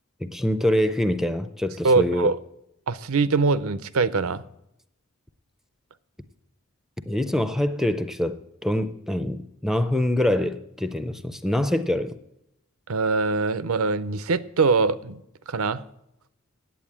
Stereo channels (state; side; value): normal; both; correlation 0.31